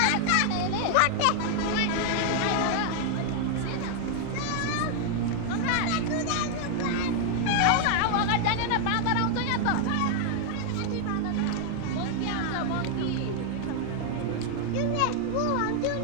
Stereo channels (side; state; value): both; different; correlation 0.00